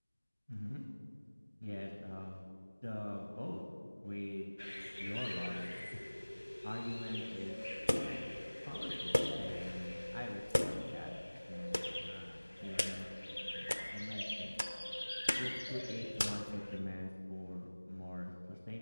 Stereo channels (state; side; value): inverted; both; correlation -1.00